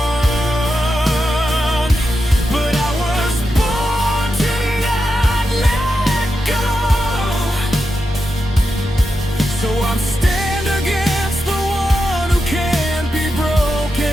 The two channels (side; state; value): both; normal; correlation 0.88